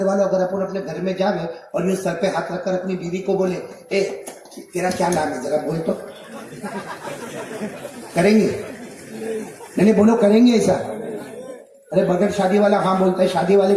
والے اگر اپن اپنے گھر میں جاوے اور یہ سر پہ ہاتھ رکھ کر اپنی بیوی کو بولے اے تیرا کیا نام ہے ذرا بول تو، کریں گے؟ نہیں بولو، کریں گے ایسا؟ ارے بغیر شادی والا ہاں بولتا ہے، شادی والے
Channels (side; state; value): both; identical; correlation 1.00